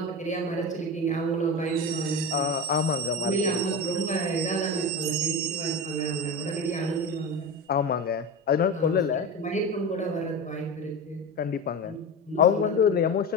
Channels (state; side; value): normal; both; correlation 0.24